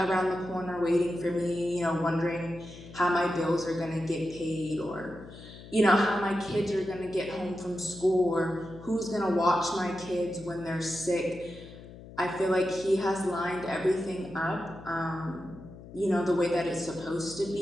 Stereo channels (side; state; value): left; noise; hum, 16 dB below the sound